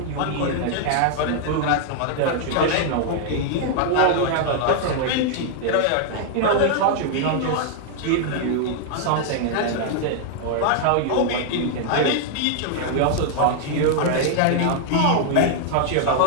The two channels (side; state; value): both; different; correlation 0.00